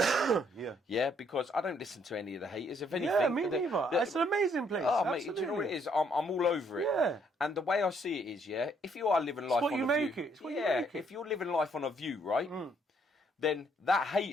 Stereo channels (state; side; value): normal; both; correlation 0.68